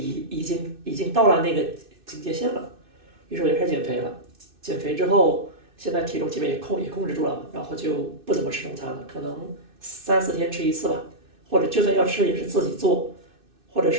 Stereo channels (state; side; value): late; left; 2.6 ms